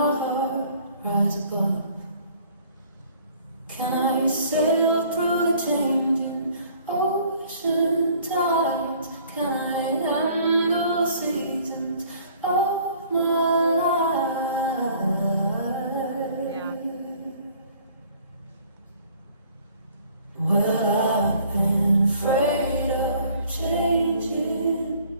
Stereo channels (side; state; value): both; inverted; correlation -0.56